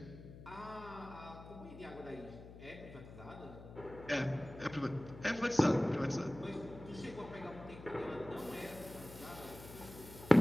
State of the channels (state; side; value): noise; left; hum, 15 dB below the sound